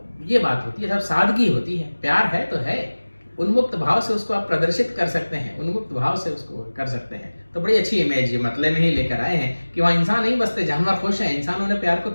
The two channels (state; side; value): inverted; both; correlation -1.00